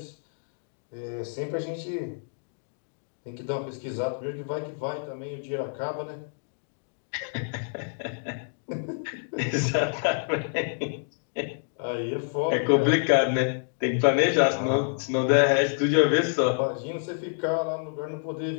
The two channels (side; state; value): right; silent; digital silence